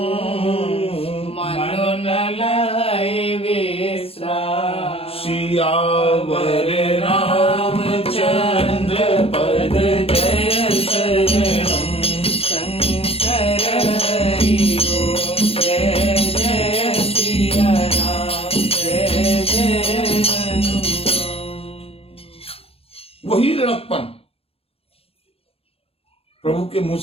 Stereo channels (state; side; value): late; right; 0.28 ms